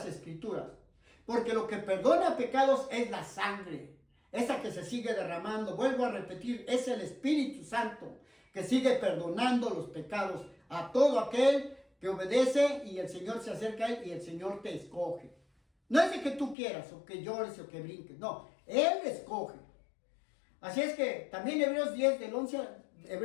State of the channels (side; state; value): right; drops out; at 16.6 s